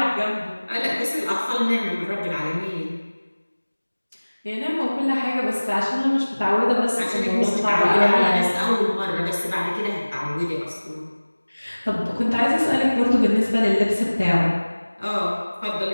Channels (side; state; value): both; inverted; correlation -1.00